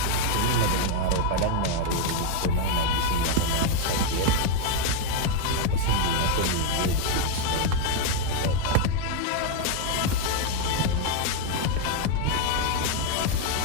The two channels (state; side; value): different; both; correlation 0.01